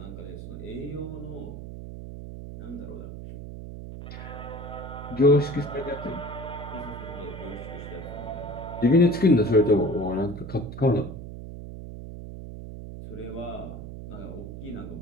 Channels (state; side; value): noise; right; hum, 10 dB below the sound